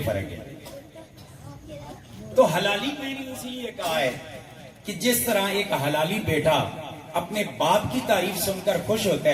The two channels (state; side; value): identical; both; correlation 1.00